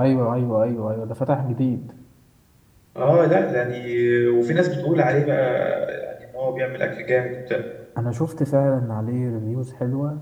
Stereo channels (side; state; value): both; identical; correlation 1.00